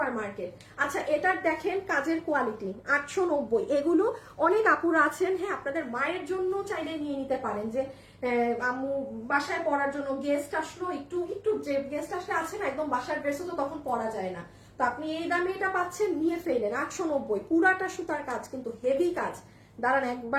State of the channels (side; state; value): both; identical; correlation 1.00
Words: মার্কেট। আচ্ছা এটার দেখেন কাজের কোয়ালিটি, 890। এগুলো অনেক আপুরা আছেন, হ্যাঁ আপনাদের মায়ের জন্য চাইলে নিয়ে নিতে পারেন, যে আম্মু বাসায় পরার জন্য, গেস্ট আসলো, একটু যে গেস্ট আসলে আছে না একদম বাসার ড্রেসও তো তখন পরা যায় না, তো আপনি এই দামে এটা পাচ্ছেন, নিয়ে ফেলেন। 890, পুরাটা সুতার কাজ, কিন্তু হেভি কাজ। দাঁড়ান